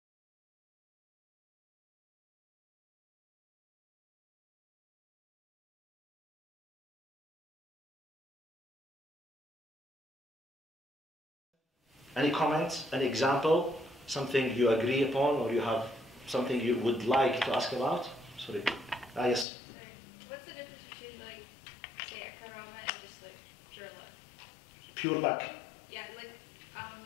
Any comments, any example, something you agree upon, or you have something you would like to ask about? Sorry. Yes. What's the difference between, like, say, a karama and just, like, pure luck? Pure luck. Yeah, like,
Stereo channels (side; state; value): right; drops out; at 19.5 s